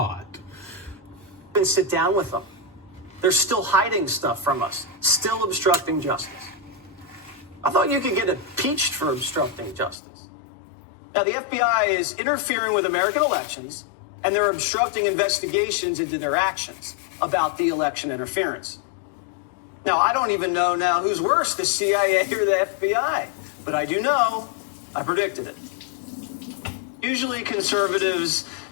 ...and sit down with them. They're still hiding stuff from us, still obstructing justice. I thought you could get impeached for obstructing justice. Now, the FBI is interfering with American elections, and they're obstructing investigations into their actions about the election interference. Now, I don't even know now who's worse, the CIA or the FBI, but I do know I predicted it. Usually conservatives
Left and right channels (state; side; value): drops out; right; at 10.0 s